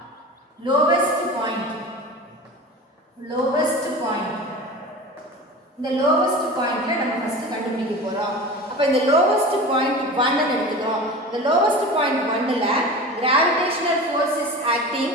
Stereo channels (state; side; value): normal; both; correlation 0.33